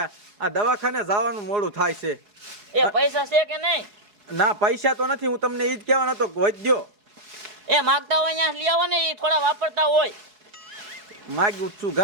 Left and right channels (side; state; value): left; late; 4.7 ms